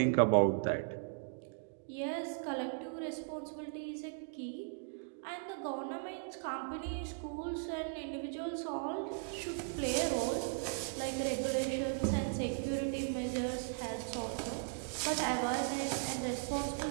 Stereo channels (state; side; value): silent; left; digital silence